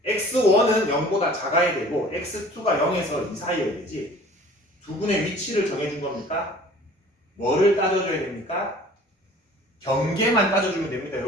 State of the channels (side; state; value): both; normal; correlation 0.48